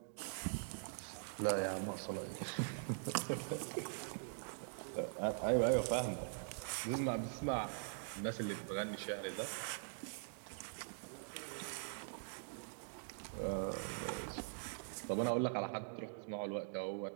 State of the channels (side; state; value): left; silent; digital silence